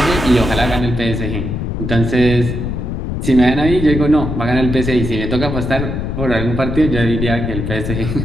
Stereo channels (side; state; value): left; noise; rumble, 3 dB below the sound